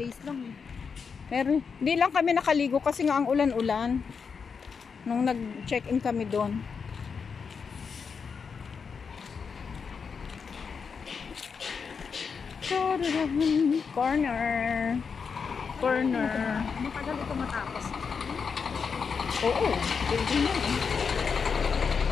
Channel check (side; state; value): right; quieter; 5.8 dB